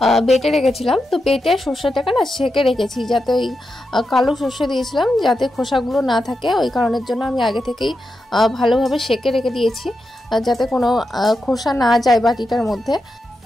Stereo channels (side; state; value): both; normal; correlation 0.87